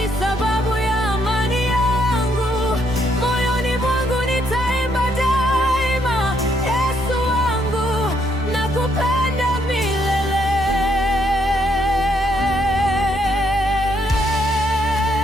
sababu ya amani yangu. Moyoni mwangu nitaimba daima, Yesu wangu, nakupenda milele.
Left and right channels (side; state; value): both; normal; correlation 0.73